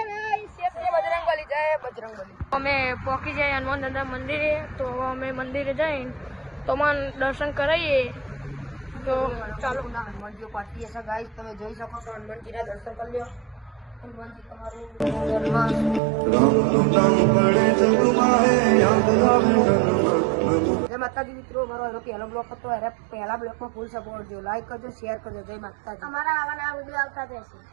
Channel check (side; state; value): left; drops out; at 16.0 s